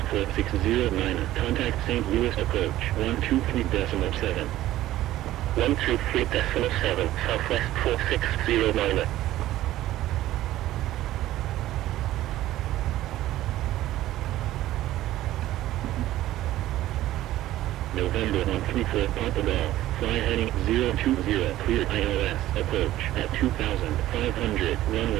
4609, contact St. Louis approach 123.7. 123.7, Southwest 4609. November 134 Papa Golf, fly heading 020, clear ILS, approach at 2500,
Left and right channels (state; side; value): quieter; left; 14.7 dB